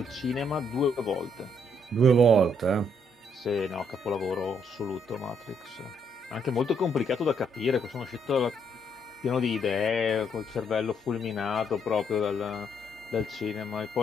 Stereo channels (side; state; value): both; normal; correlation 0.71